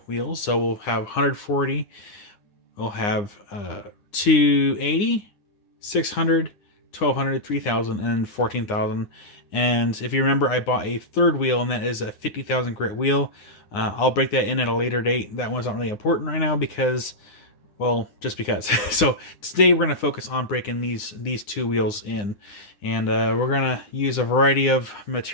wheels, so we'll have 140, we'll have 280, 600, 1200, 3000, and 14,000. And if you remember, I bought a third wheel, and that is a 50,000 grit wheel. I'll break that in at a later date. That one's not really important right now because, well, just because. So today we're going to focus on breaking these two wheels in. And we're going to use a variety of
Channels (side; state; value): right; late; 9.8 ms